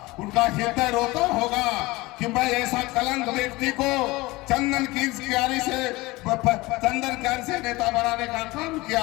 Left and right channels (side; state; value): right; quieter; 21.4 dB